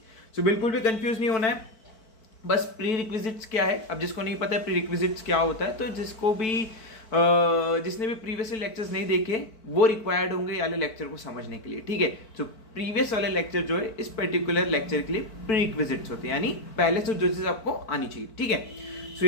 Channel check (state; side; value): late; right; 4.5 ms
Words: सो बिल्कुल भी कंफ्यूज नहीं होना है। बस प्री रिक्विजिट्स क्या है, अब जिसको नहीं पता है प्री रिक्विजिट्स क्या होता है, तो जिसने भी प्रीवियस लेक्चर्स नहीं देखे वो रिक्वायर्ड होंगे वाले लेक्चर को समझने के लिए। ठीक है, तो प्रीवियस वाले लेक्चर जो है इस पर्टिकुलर लेक्चर के लिए प्री रिक्विजिट्स होते हैं, यानी पहले से जो चीज आपको आनी चाहिए। ठीक है, सो